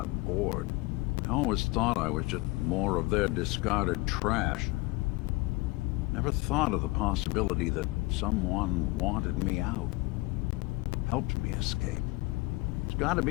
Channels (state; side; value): quieter; right; 22.5 dB